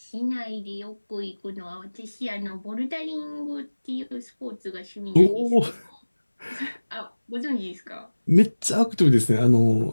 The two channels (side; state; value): both; inverted; correlation -1.00